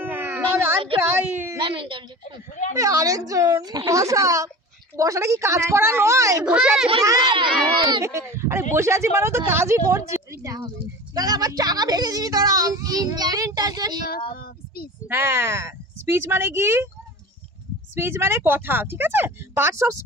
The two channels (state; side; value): normal; both; correlation 0.35